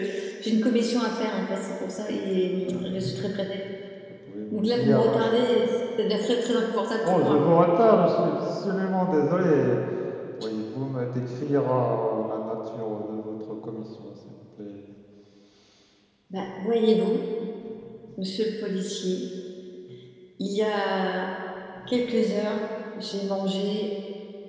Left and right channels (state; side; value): identical; both; correlation 1.00